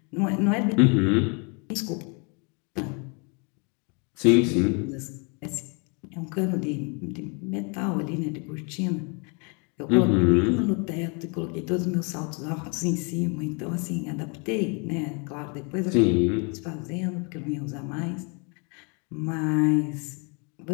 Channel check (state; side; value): quieter; right; 34.3 dB